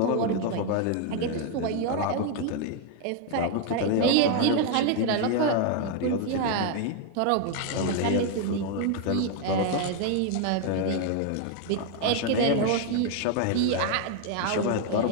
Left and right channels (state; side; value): different; both; correlation 0.01